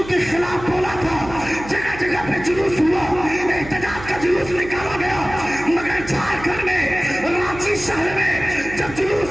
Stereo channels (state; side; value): noise; right; hum, 13 dB below the sound